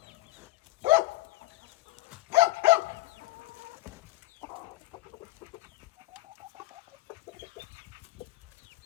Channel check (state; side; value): quieter; right; 17.8 dB